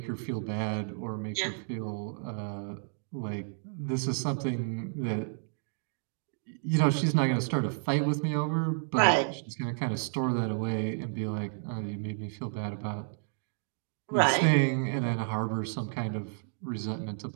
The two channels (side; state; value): left; silent; digital silence